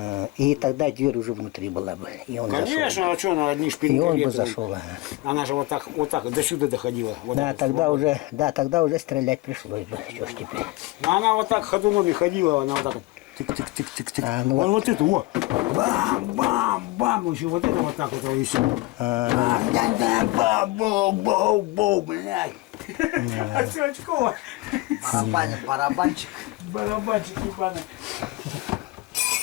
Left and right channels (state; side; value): quieter; right; 20.4 dB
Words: И тогда дверь уже внутри была бы. И он зашел. Конечно, а что она одни И шпильки он бы летают? зашел. Она же вот так, до сюда доходила. Вот Да, так тогда уже стрелять пришлось бы. Что ж теперь? Но она вот так ходуном и ходила, она вот так вот. Тык-тык-тык-тык-тык. А, ну Вон вот это, вот. Бам-бам-бам. Еще вот это вот так вот и все. Бау-бау-бау, блядь. А все очково. Барабанчик. Барабанчик ебаный.